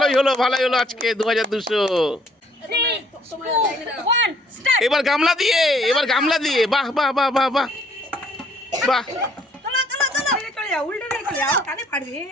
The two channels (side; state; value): both; normal; correlation 0.63